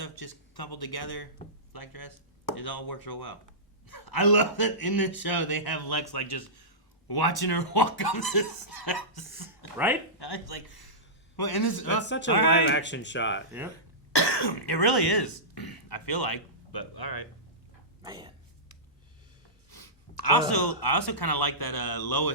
just coupled together, black dress. It all works real well. I love that in this show they have Lex like just watching her walk up the steps. Right? I was like, well, and this That's such a all live right. action shot. Yep. It really is. I feel like, but all right. Man. I also kind of like that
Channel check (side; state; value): both; normal; correlation -0.18